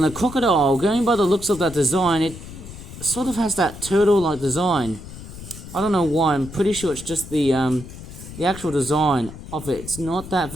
a crocodile. Going by the looks of that design, it sort of has that turtle-like design. I don't know why. I'm pretty sure it's just the actual design of it. It's not that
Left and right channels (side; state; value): left; noise; rumble, 13 dB below the sound